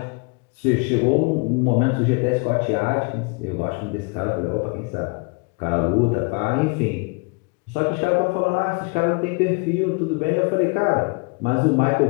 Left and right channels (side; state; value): right; quieter; 32.1 dB